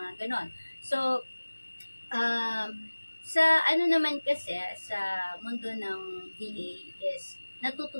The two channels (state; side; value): inverted; both; correlation -1.00